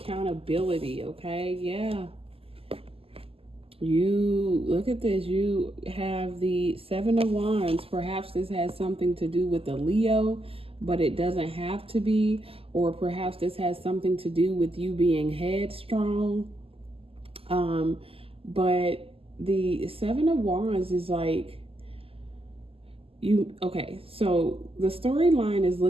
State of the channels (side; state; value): left; late; 0.28 ms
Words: okay? Yeah. You, look at this. You have the Seven of Wands. Perhaps this has something to do with the Leo, but it doesn't have to be. Or perhaps this has something to do with you being headstrong. But the Seven of Wands is like, okay, so the storyline is